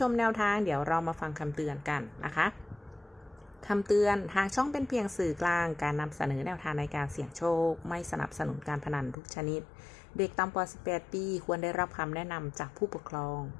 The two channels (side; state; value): right; drops out; at 9.2 s